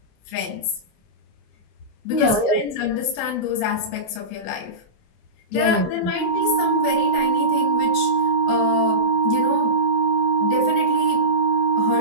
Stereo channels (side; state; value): right; late; 28 ms